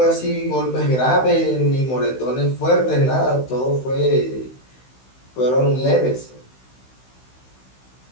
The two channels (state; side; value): late; right; 16 ms